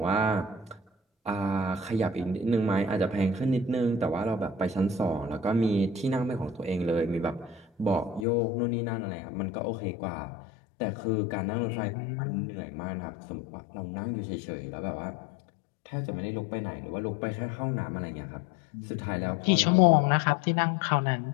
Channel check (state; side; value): drops out; right; at 8.2 s